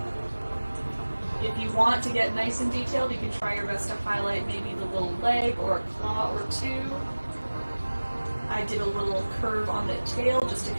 If you want to get nice and detailed, you can try your best to highlight maybe the little leg or a claw or two. I did a little curve on the tail just to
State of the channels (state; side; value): inverted; both; correlation -1.00